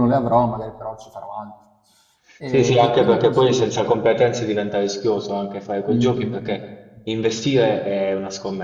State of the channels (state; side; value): identical; both; correlation 1.00